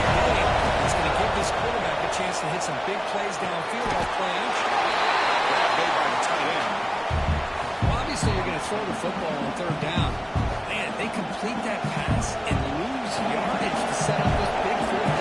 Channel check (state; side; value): identical; both; correlation 1.00